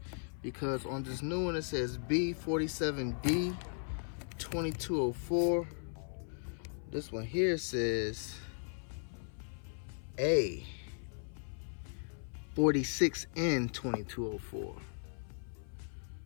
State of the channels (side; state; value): right; silent; 53 dB below the other